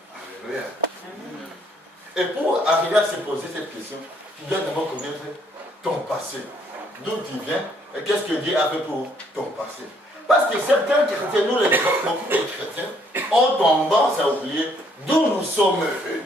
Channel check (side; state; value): both; normal; correlation 0.66